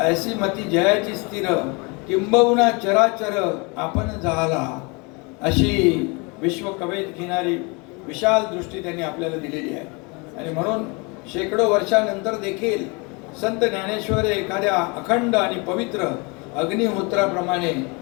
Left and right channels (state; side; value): quieter; right; 29.4 dB